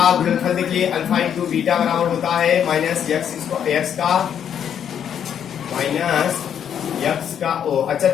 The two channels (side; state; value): right; quieter; 8.8 dB